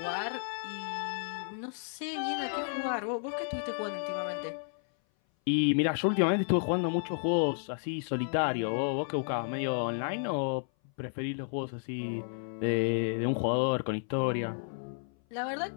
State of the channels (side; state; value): right; silent; 56 dB below the other